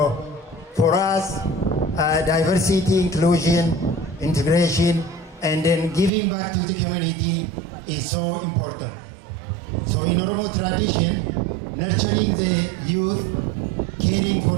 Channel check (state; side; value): drops out; left; at 6.1 s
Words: for us, diversity, inclusion, integration, and then giving back to the community is so important. So in Oromo tradition, nurturing the youth, caring